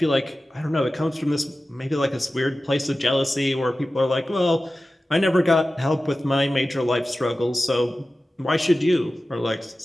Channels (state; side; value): normal; both; correlation 0.95